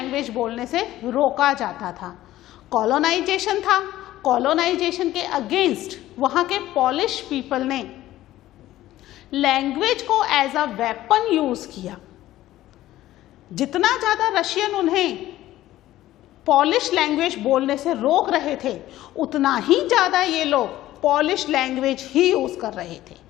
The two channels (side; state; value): right; quieter; 14.8 dB